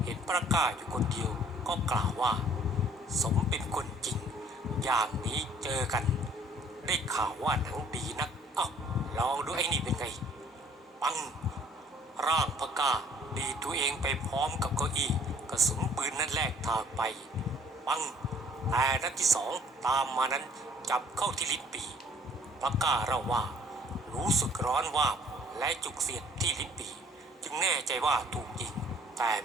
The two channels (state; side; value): normal; both; correlation 0.57